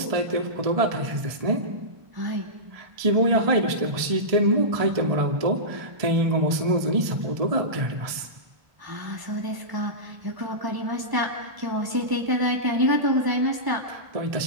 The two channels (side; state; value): left; late; 1.7 ms